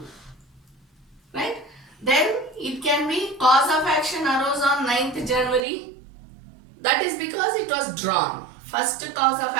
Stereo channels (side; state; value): left; drops out; at 5.7 s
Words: Right? Then it can be cause of action arose on 9th January. That is because it was drawn. First cause of